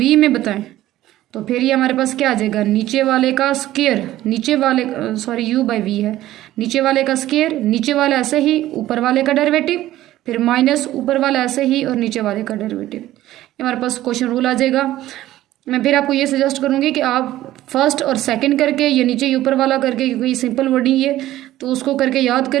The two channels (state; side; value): quieter; left; 14.6 dB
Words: में बताएं तो फिर ये हमारे पास क्या आ जाएगा, नीचे वाले का स्क्वायर, नीचे वाले सॉरी u/v है, नीचे वाले का स्क्वायर, नीचे वाला ऐसे ही, ऊपर वाले का डेरिवेटिव, फिर माइनस ऊपर वाला ऐसे ही और नीचे वाले का डेरिवेटिव। हमारे पास क्वेश्चन रूल आ जाएगा। मैं फिर आपको ये सजेस्ट करूँगी कि आप फर्स्ट और सेकंड करके, ये नीचे ऊपर वाला करके, क्योंकि ये सिंपल वर्डिंग है तो उसको करके याद